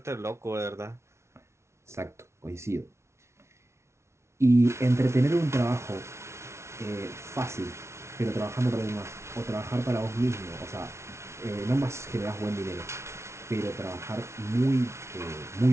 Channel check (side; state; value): left; late; 0.13 ms